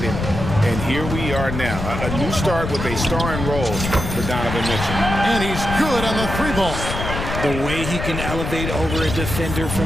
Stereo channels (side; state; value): left; noise; rumble, 5 dB below the sound